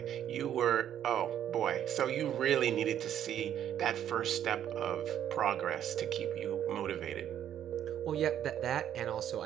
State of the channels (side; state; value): left; quieter; 10.3 dB